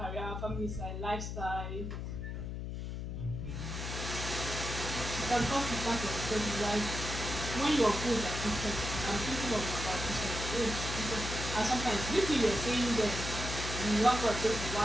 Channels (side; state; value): left; noise; hum, 5 dB below the sound